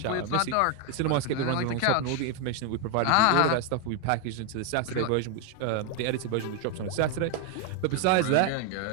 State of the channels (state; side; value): different; both; correlation 0.01